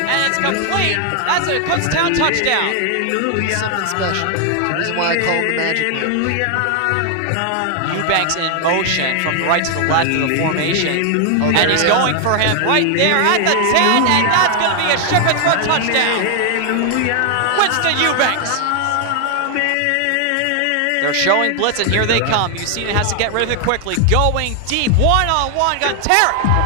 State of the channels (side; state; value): both; different; correlation 0.00